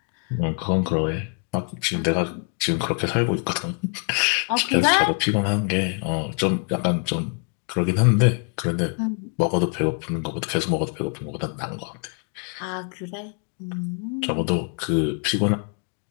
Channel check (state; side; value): quieter; right; 39.6 dB